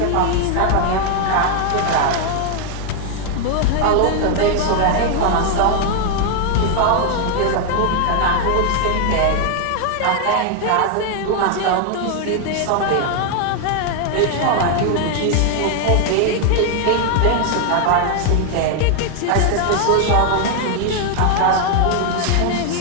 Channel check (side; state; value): both; different; correlation 0.00